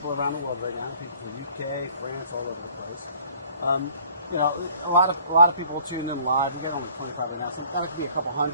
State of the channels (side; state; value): both; inverted; correlation -0.54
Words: around the world right now, people from UK, France, all over the place. You know, a lot of people will tune in live. We get only 25 right now, so it might be a couple